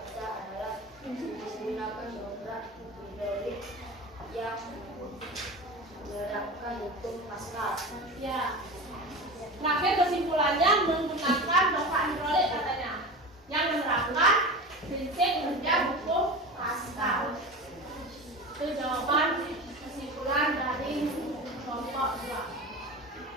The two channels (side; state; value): both; normal; correlation 0.30